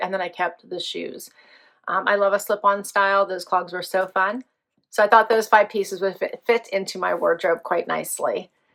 And then I kept the shoes. I love a slip-on style. Those clogs were so fun. So I thought those 5 pieces would fit into my wardrobe quite nicely.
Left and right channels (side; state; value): both; identical; correlation 1.00